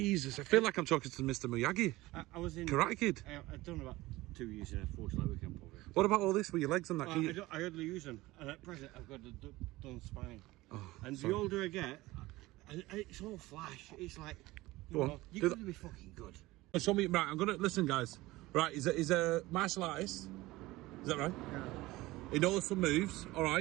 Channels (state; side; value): quieter; left; 19.1 dB